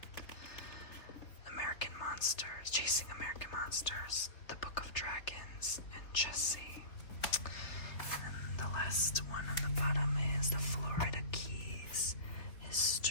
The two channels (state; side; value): late; right; 3.4 ms